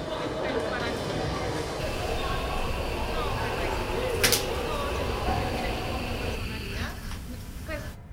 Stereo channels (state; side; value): identical; both; correlation 1.00